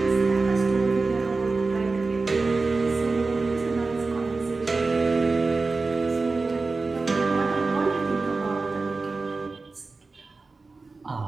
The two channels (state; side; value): quieter; left; 3.8 dB